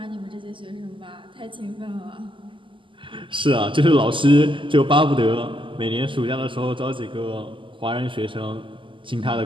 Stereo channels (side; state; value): left; late; 0.25 ms